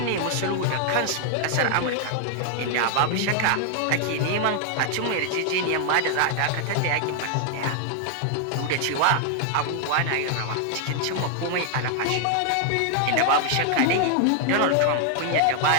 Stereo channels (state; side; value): different; both; correlation 0.00